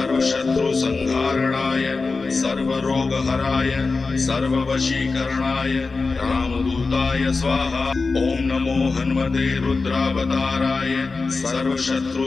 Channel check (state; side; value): quieter; right; 4.1 dB